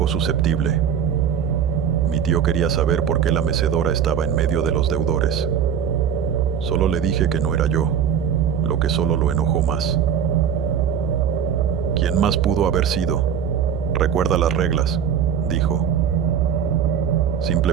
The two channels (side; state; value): left; quieter; 8.2 dB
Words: susceptible. Mi tío quería saber por qué la mecedora estaba en medio de los deudores. Solo le dije que no era yo, lo que solo lo enojó más. ¿Quién más pudo haber sido? Recuerda las reglas, dijo.